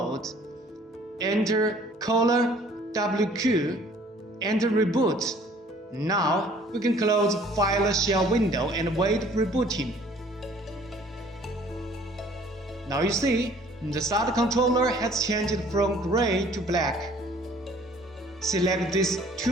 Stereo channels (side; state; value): both; normal; correlation 0.55